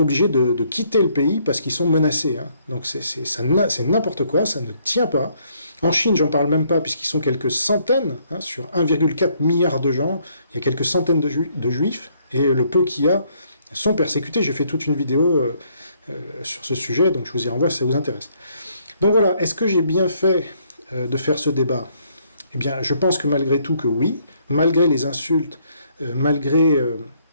de quitter le pays parce qu'ils sont menacés. Hein. Donc c'est n'importe quoi, ça ne tient pas. En Chine, j'en parle même pas, puisqu'ils sont quelques centaines, hein, sur 1,4 milliard de gens, il y a quelques centaines de juifs, et le peu qu'il y a sont persécutés. J'ai fait toute une vidéo sur ce sujet, donc je vous y renvoie si ça vous intéresse. Donc voilà, est-ce que j'ai bien fait de faire ce débat ? Eh bien, je pense que malgré tout que oui, malgré les insultes, malgré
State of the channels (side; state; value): both; inverted; correlation -0.68